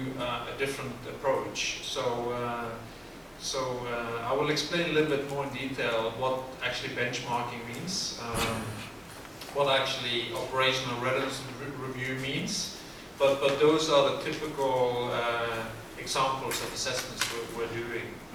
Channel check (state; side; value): identical; both; correlation 1.00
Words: a different approach. So I will explain a little bit more in detail what actually benchmarking means, what actually operational readiness review means, but those are the typical examples of assessments we're doing.